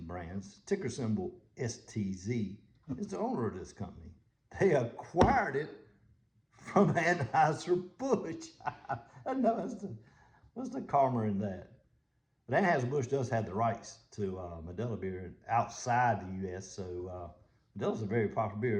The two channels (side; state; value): both; identical; correlation 1.00